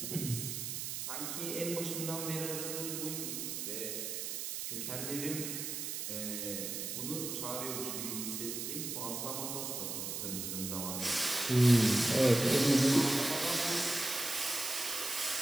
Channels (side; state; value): right; noise; hiss, 4 dB below the sound